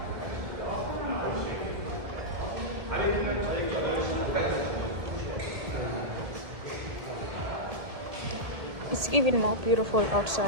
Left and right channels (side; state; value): left; late; 1.7 ms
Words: It's even more beautiful